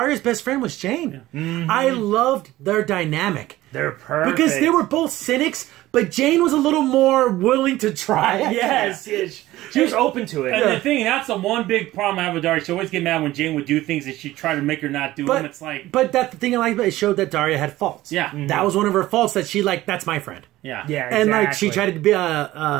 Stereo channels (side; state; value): left; quieter; 16.4 dB